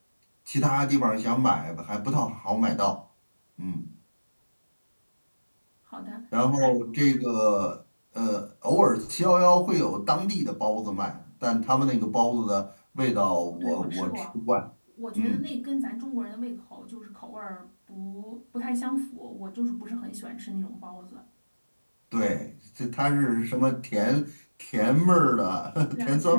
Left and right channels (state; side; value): inverted; both; correlation -1.00